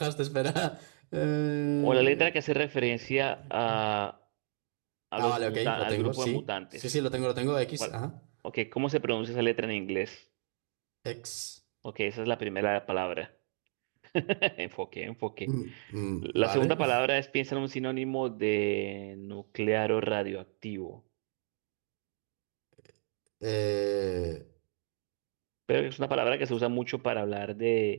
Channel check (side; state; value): left; silent; digital silence